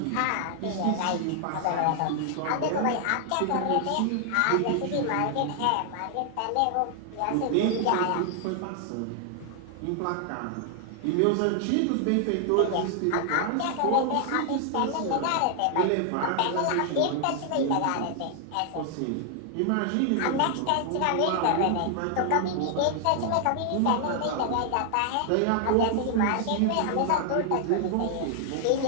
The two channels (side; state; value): both; different; correlation 0.00